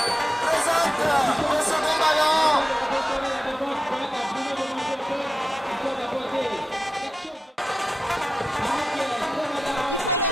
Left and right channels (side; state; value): both; normal; correlation 0.92